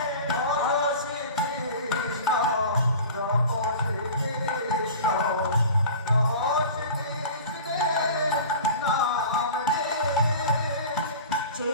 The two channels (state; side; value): inverted; both; correlation -0.38